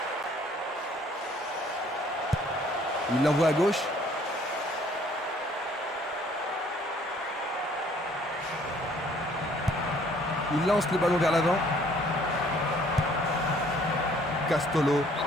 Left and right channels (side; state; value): both; normal; correlation 0.59